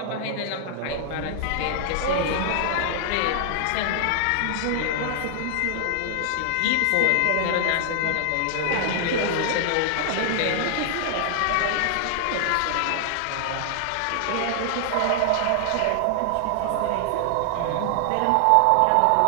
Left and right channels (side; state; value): both; different; correlation 0.00